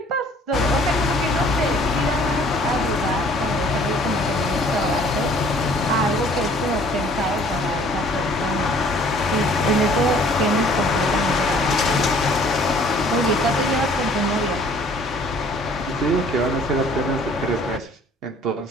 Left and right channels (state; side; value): normal; both; correlation 0.55